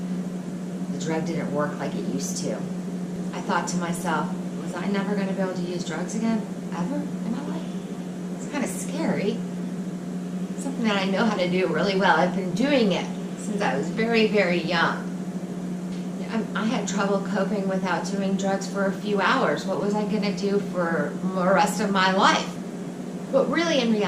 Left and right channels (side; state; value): both; identical; correlation 1.00